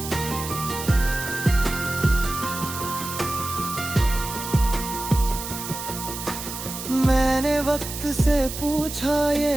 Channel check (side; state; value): right; noise; hiss, 8 dB below the sound